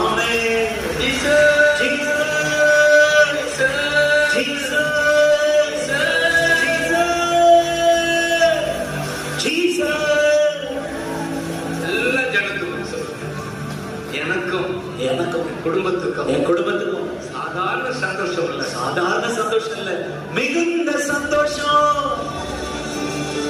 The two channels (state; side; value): identical; both; correlation 1.00